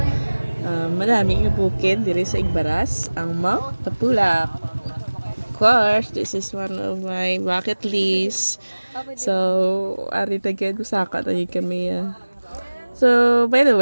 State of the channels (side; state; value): both; inverted; correlation -1.00